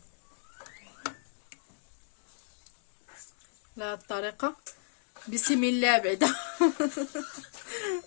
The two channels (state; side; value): silent; right; digital silence